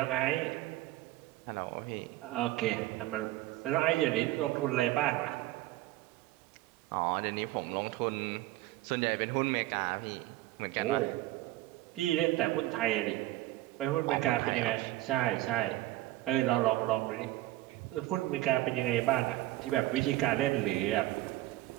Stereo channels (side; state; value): left; quieter; 16.7 dB